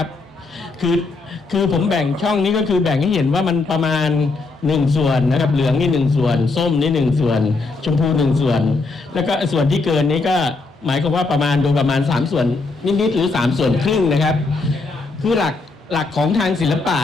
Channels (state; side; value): quieter; right; 3.6 dB